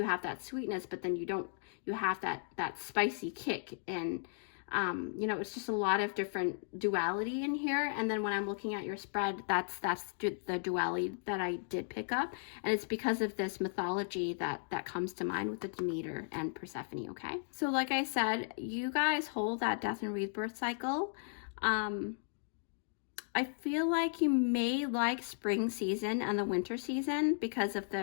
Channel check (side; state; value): right; silent; digital silence